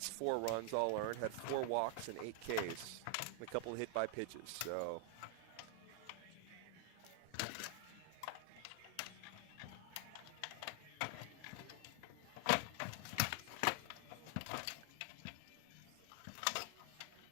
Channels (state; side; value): different; both; correlation 0.00